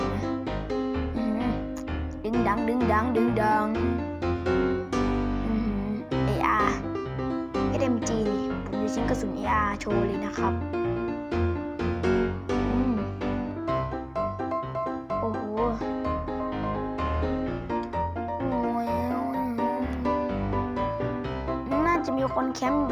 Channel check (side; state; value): both; identical; correlation 1.00